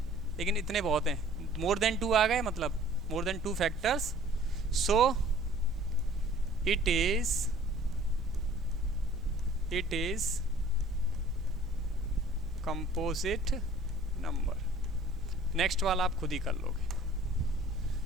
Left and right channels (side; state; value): both; normal; correlation 0.52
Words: लेकिन इतने बहुत हैं, मोर देन टू आ गए, मतलब more than two factors, so it is composite number. Next वाला आप खुद ही कर लोगे,